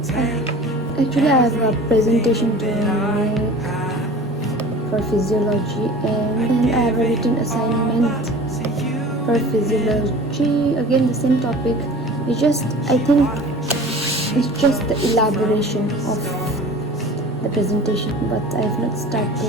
take Actually, I have a presentation to I make have for physiology, and I have a written assignment to you? for physiology. Again, the same topic. It's just, I think, it's just the elaboration of the presentation, but I have not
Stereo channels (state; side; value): normal; both; correlation 0.41